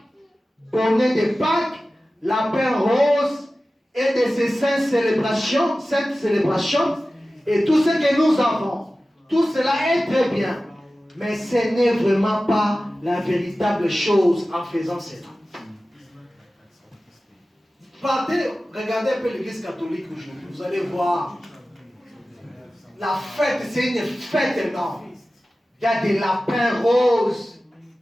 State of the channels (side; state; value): both; normal; correlation 0.95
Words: bonnets de Pâques, lapins roses et de ces saintes célébrations, et tout ce que nous avons. Tout cela est très bien, mais ce n'est vraiment pas la véritable chose en faisant cela. Partez, regardez un peu l'église catholique aujourd'hui, vous allez voir. La fête, c'est une fête énorme. Il y a des lapins roses,